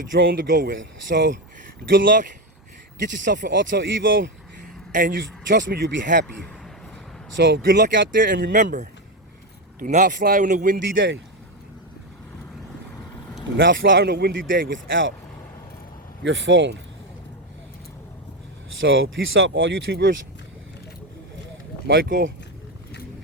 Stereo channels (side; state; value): both; normal; correlation 0.12